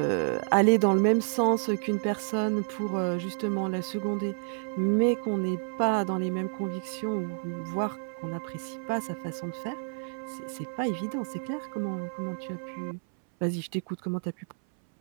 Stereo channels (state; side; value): silent; left; 58 dB below the other